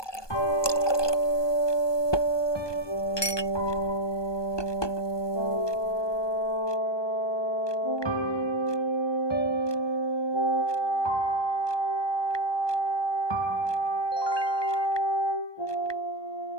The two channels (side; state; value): right; late; 1.2 ms